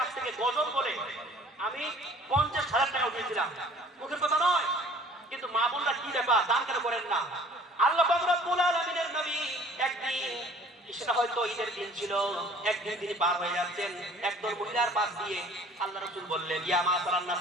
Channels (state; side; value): normal; both; correlation 0.52